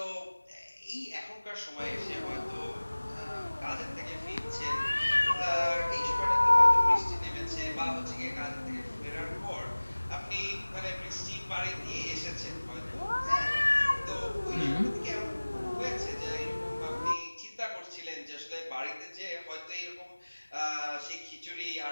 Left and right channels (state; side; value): inverted; both; correlation -1.00